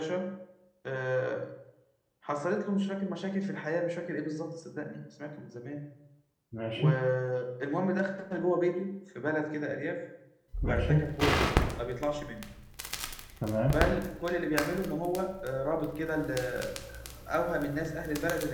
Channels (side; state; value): both; identical; correlation 1.00